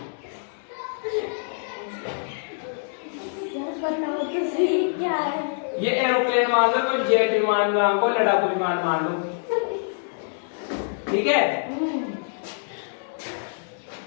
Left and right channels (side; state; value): right; silent; digital silence